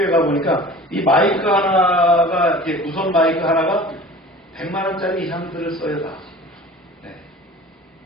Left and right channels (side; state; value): both; normal; correlation 0.42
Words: 가 보니까 이 마이크 하나가 이렇게 무선 마이크 하나가 100만 원짜리 이상들을 써요 다. 네.